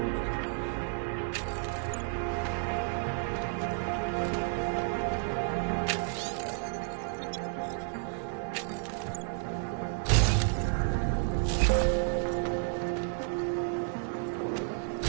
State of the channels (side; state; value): left; silent; 57 dB below the other